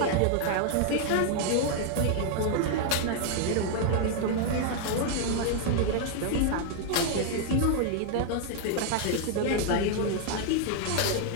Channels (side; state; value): both; different; correlation 0.00